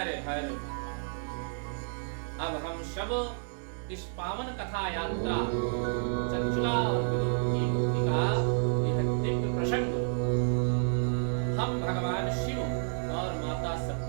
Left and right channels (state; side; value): silent; left; 56 dB below the other